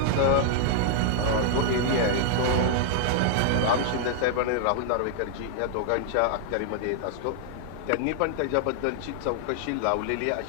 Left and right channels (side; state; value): both; different; correlation -0.01